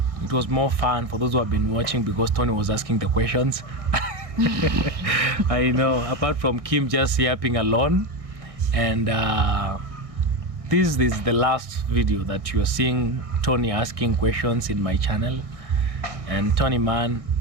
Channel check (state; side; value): late; left; 1.6 ms